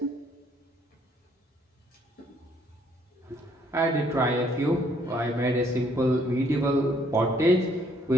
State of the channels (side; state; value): both; normal; correlation 0.66